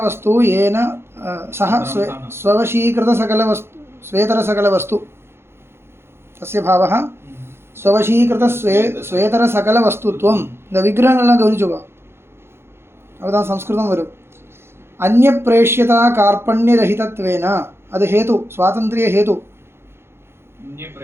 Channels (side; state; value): left; late; 0.12 ms